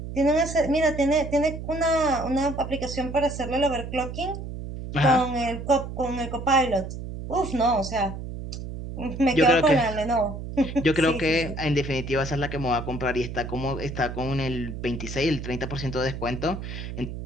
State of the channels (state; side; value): noise; right; hum, 8 dB below the sound